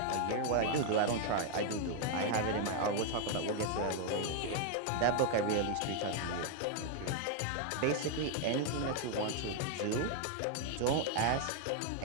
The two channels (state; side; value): different; both; correlation 0.00